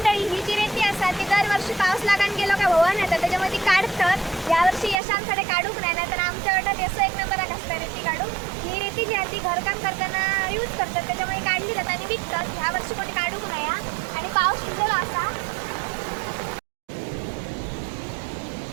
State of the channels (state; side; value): drops out; left; at 5.0 s